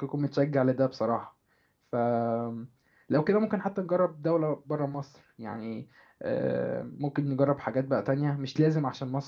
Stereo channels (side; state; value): both; identical; correlation 1.00